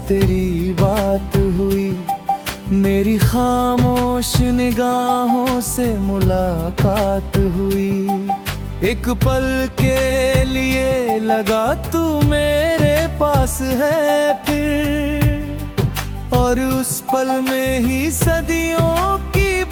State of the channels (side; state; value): both; identical; correlation 1.00